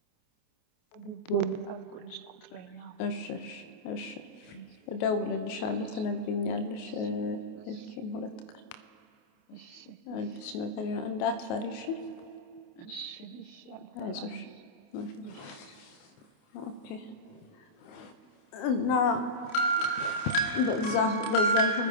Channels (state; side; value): late; right; 28 ms